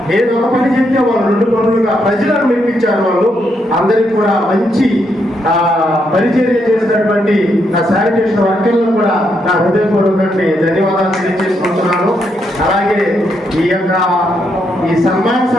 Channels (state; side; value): normal; both; correlation 0.78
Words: ఏదో ఒక పని చెప్తే వాళ్ళు 2 పనులుగా ప్రజలను మెప్పించారు. వాళ్ళు అందరికి కూడా మంచి పరిచర్య చేసినటువంటి నా శానిటేషన్ వర్కర్లను కూడా నా హృదయపూర్వకంగా ధన్యవాదాలు తెలియజేసుకుంటున్నాను. అలాగే ఈ సన్మాన